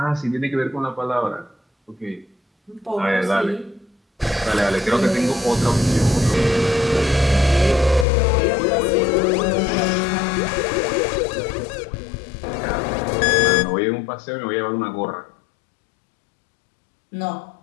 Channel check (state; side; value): drops out; right; at 8.1 s